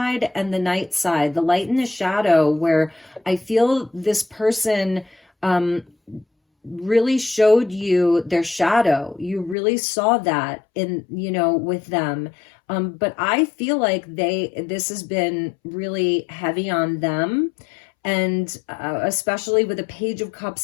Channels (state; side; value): drops out; right; at 9.6 s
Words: and the night side, the light and the shadow, where I feel this person really showed you their shadow. You really saw that in, with them. But I feel like this has been really heavy on them. And especially with a Page of